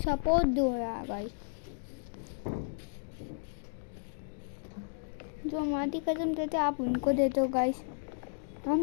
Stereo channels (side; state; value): right; silent; digital silence